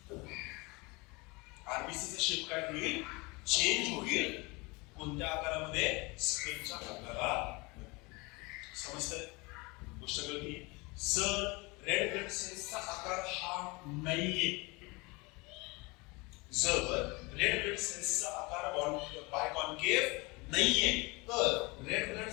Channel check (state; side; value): quieter; right; 26.0 dB